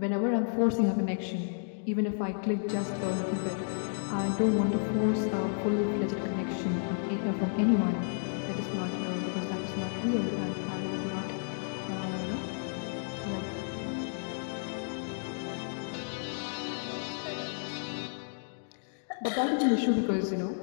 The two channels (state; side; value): silent; right; digital silence